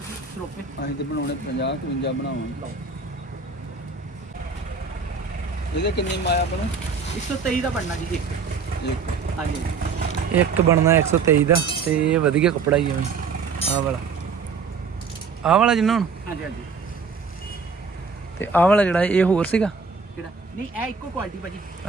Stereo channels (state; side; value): quieter; left; 5.1 dB